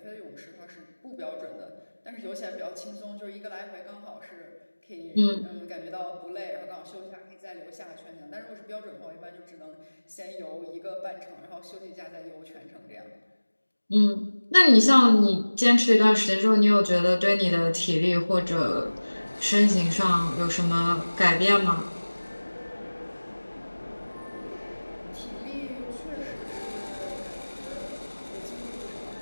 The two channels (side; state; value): both; inverted; correlation -1.00